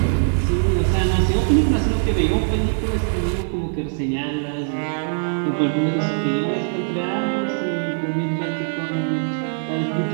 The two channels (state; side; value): silent; left; 65 dB below the other